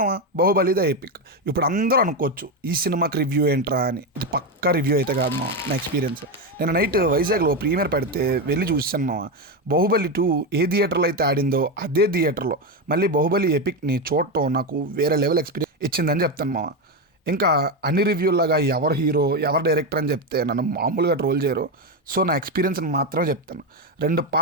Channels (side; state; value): both; normal; correlation 0.11